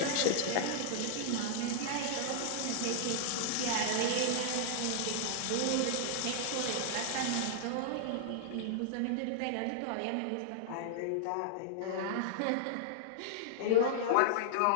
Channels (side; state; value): both; different; correlation -0.01